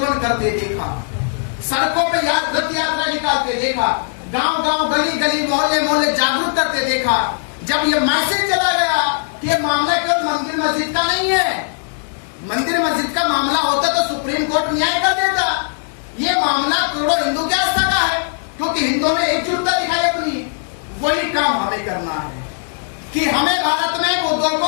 करते देखा, सड़कों पे रथ यात्रा निकालते देखा, गांव गांव गली गली मोहल्ले मोहल्ले जागरूक करते देखा। जब ये मैसेज चला गया कि ये मामला केवल मंदिर मस्जिद का नहीं है, मंदिर मस्जिद का मामला होता तो सुप्रीम कोर्ट न्याय कर देता। ये मामला करोड़ों हिंदू की आस्था का है, क्योंकि हिंदुओं ने एकजुटता दिखाई अपनी। वही काम हमें करना है कि हमें भारत में बौद्धों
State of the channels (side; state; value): right; silent; digital silence